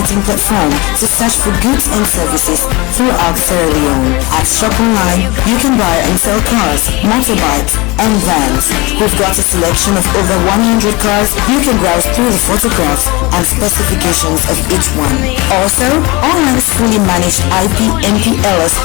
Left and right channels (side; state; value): right; quieter; 24.4 dB